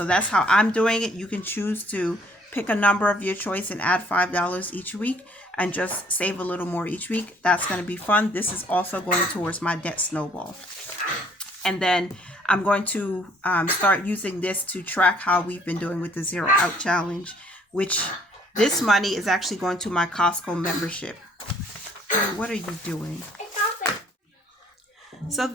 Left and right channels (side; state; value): both; normal; correlation 0.61